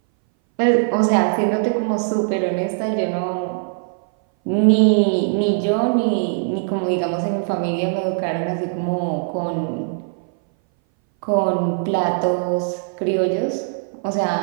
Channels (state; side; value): silent; left; 61 dB below the other